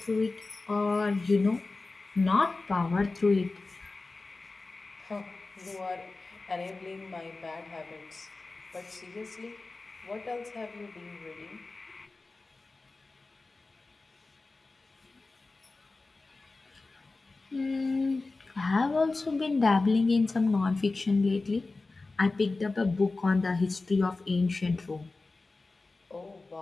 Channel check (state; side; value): quieter; right; 3.5 dB